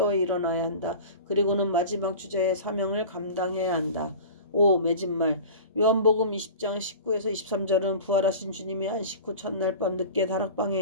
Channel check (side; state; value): both; inverted; correlation -0.36